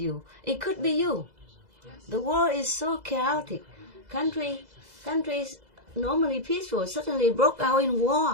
It could be you. The world is so chaotic. Countries normally peaceful suddenly broke out in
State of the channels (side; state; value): left; late; 2.0 ms